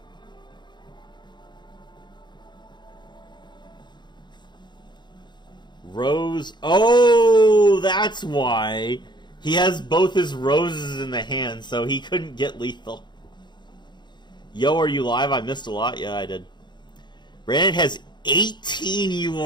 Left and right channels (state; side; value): late; right; 0.21 ms